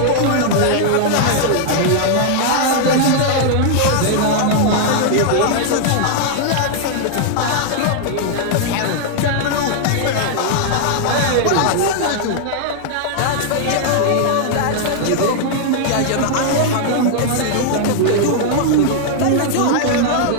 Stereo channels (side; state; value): both; different; correlation 0.00